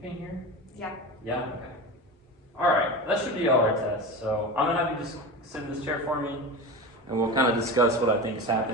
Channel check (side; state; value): both; normal; correlation 0.27